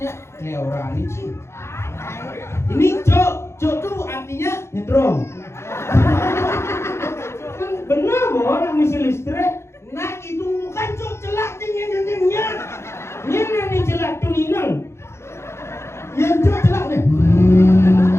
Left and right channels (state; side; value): late; right; 0.13 ms